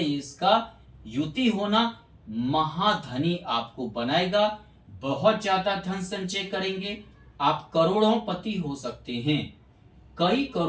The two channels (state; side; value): identical; both; correlation 1.00